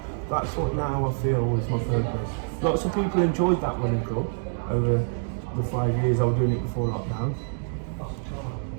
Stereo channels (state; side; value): silent; left; digital silence